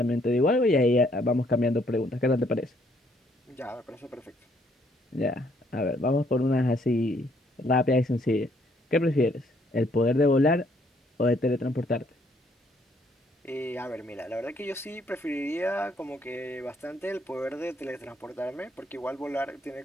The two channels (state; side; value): normal; both; correlation 0.68